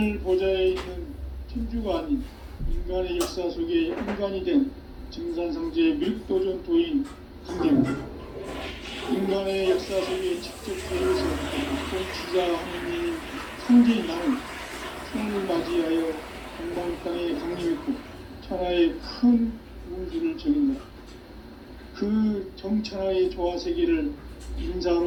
보좌에 있는 천주가 아닌 인간의 역사 속에 인간이 된 증산상제의 밀도전 도인 강대우, 인간의 역사 속에 직접 개입해서 통치자 하느님인 상제인 나는春을 맞이하여 동방 땅에 강림했고 천하의 큰 운수를 적인다. 그 정천하의 조화 세계를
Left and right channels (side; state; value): both; identical; correlation 1.00